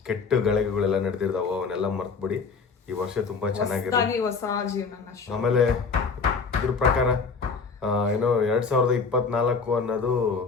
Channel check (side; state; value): right; quieter; 5.0 dB